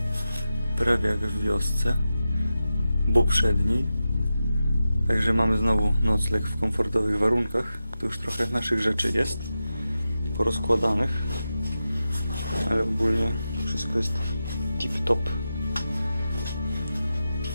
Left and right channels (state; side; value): inverted; both; correlation -0.91